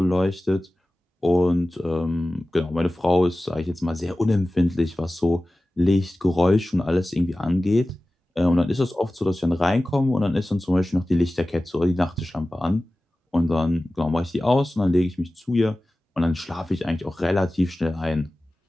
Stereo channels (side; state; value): both; normal; correlation 0.96